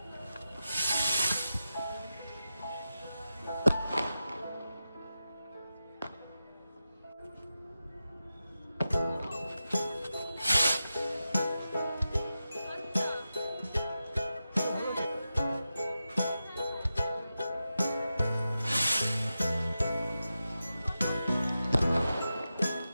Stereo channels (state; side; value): inverted; both; correlation -0.91